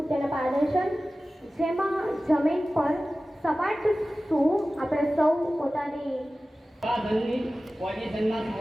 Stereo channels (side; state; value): both; normal; correlation 0.96